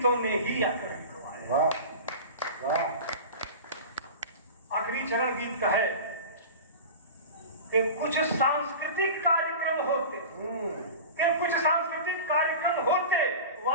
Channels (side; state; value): both; inverted; correlation -0.32